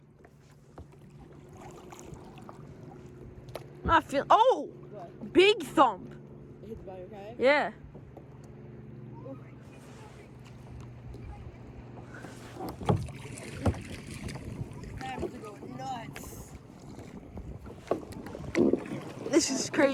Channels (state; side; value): identical; both; correlation 1.00